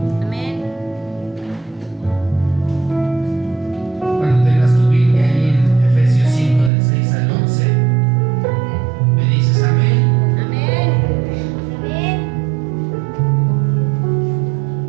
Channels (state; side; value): drops out; left; at 6.7 s